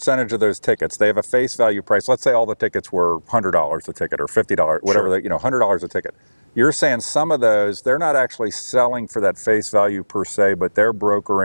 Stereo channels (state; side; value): inverted; both; correlation -1.00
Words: of those tickets, they have a face value price. Let's say all the tickets were $100 a ticket or $50, whatever, Sure. $100 a ticket. You're saying some of those, they're not actually selling for that face value per se, but they're